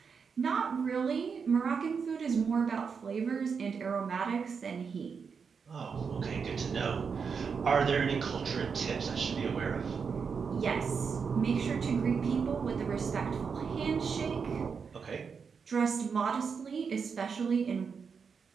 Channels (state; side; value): quieter; left; 5.9 dB